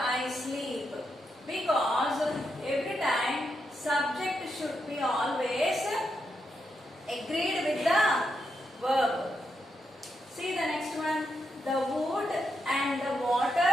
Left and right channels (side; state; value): both; normal; correlation 0.83